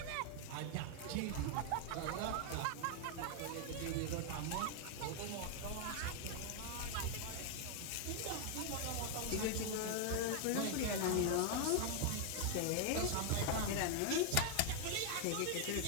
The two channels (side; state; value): both; different; correlation 0.00